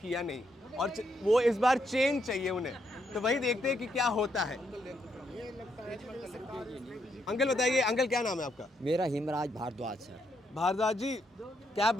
नहीं और वो इस बार चेंज चाहिए उन्हें। तो वही देखते हैं कि क्या होता है। अंकल बताइए, अंकल क्या नाम है आपका? मेरा हिमराज भारद्वाज सर। भारद्वाज जी, क्या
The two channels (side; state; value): both; normal; correlation 0.77